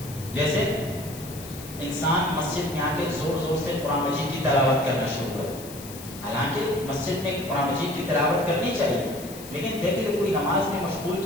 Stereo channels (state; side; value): noise; left; hiss, 15 dB below the sound